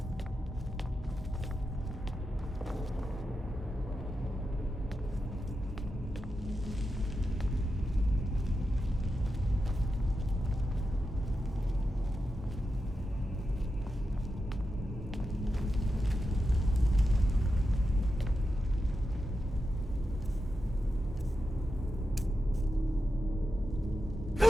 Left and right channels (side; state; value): both; normal; correlation 0.89